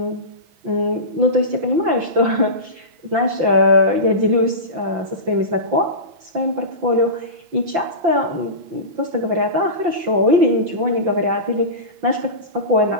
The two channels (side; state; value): left; late; 5.8 ms